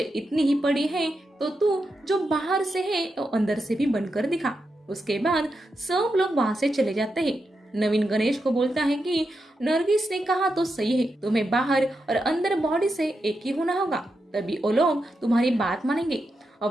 इतनी ही पड़ी है तो तू जो बाहर से है तो अंदर से भी बनकर दिखा। उसके बाद सब लोग वहाँ से चले जाते हैं। नवीन गणेश को बोलता है कि नरगिस ने कहा तो सही है, तुम्हें बाहर और अंदर बॉडी से एक ही होना होगा, तभी वो लोग तुम्हारी बात मानेंगे।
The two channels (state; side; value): normal; both; correlation 0.86